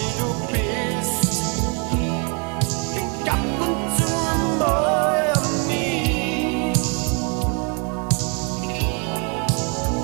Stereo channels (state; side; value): quieter; left; 36.5 dB